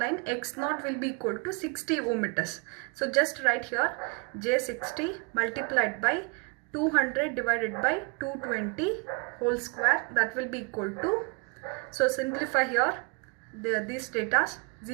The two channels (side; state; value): left; quieter; 33.1 dB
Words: X0 will be equal to 60 ohm meters. So just write here J60 multiplied by 200 divided by 220 whole square, that will be equal to, so simplify here these datas